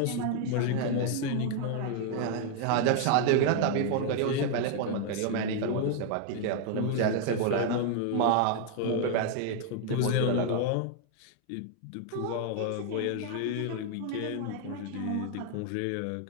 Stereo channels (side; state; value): both; different; correlation 0.00